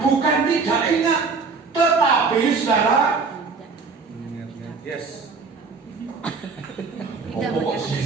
bukan tidak ingat, tetapi saudara. Yes.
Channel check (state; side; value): quieter; left; 4.8 dB